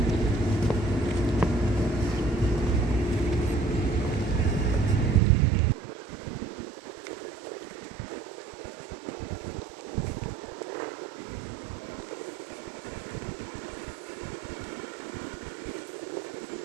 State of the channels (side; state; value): left; drops out; at 5.2 s